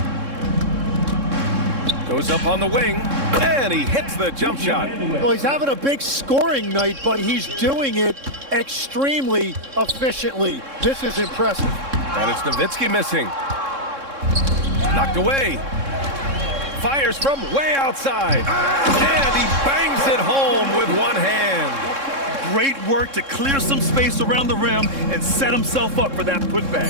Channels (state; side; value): late; left; 3.7 ms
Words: Goes up on the wing, and he hits the jump shot. Well, he's having a big scoring night, but he's doing it extremely efficiently. This is impressive. And it's Nowitzki missing. Knocked away. Fires from way outside. And he bangs it home with one hand. Great work to clear some space around the rim and set himself up for that